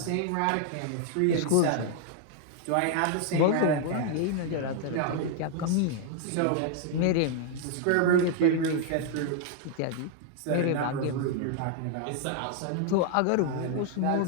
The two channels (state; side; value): different; both; correlation 0.00